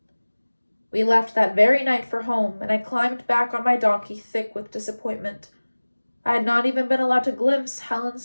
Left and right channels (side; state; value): both; inverted; correlation -1.00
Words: We left that very night for home, and I climbed back on my donkey, thick with disappointment. I had not even been allowed to glimpse